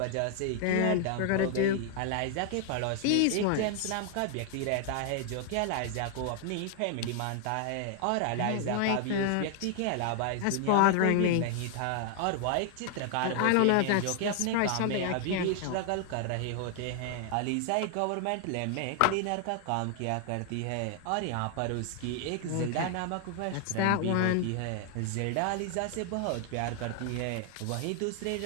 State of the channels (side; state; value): both; different; correlation 0.00